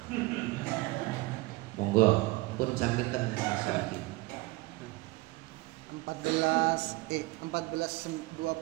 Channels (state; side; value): quieter; left; 21.1 dB